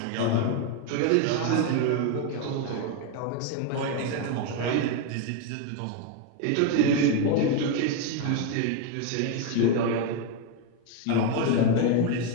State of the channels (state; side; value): different; both; correlation 0.01